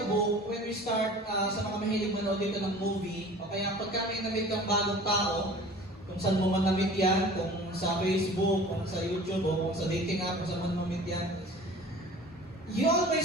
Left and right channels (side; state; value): both; normal; correlation 0.44